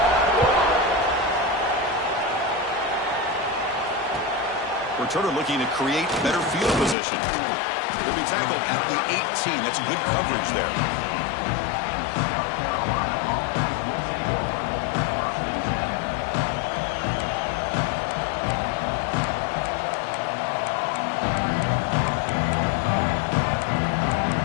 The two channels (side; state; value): right; drops out; at 7.0 s